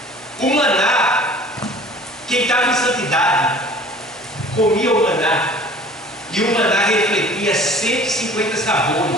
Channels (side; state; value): both; normal; correlation 0.47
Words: O maná, quem estava em santidade, comia o maná, e o maná refletia 150